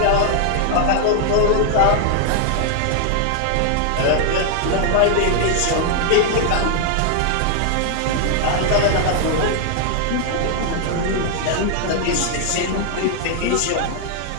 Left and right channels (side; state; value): both; different; correlation 0.00